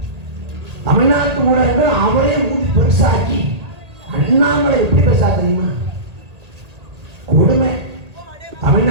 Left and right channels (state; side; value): late; left; 1.8 ms